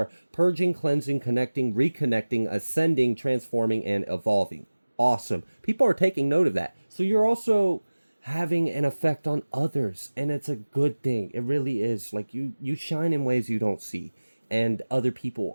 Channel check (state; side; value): inverted; both; correlation -1.00